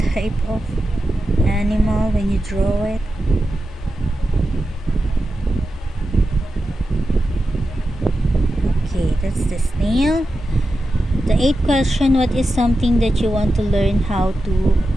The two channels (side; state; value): both; normal; correlation 0.91